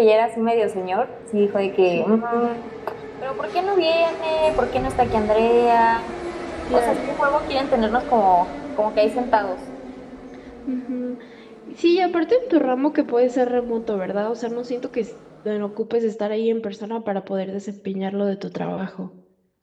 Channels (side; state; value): both; identical; correlation 1.00